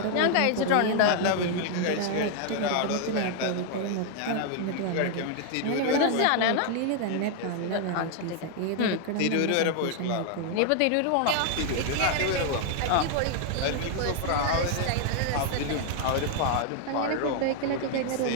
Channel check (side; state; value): both; different; correlation 0.00